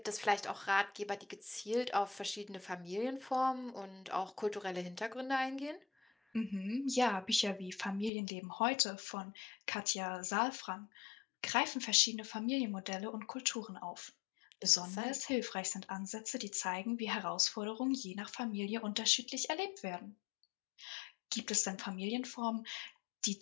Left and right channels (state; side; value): drops out; right; at 8.1 s